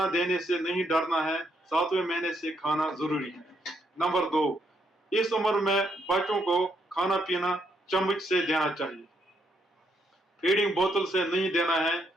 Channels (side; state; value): both; normal; correlation 0.76